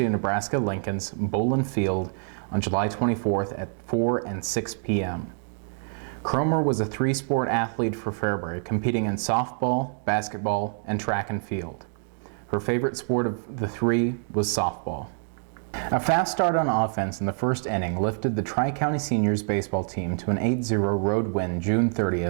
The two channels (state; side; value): silent; left; 57 dB below the other